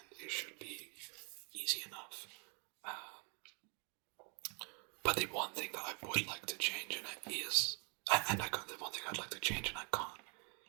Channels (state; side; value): quieter; left; 37.1 dB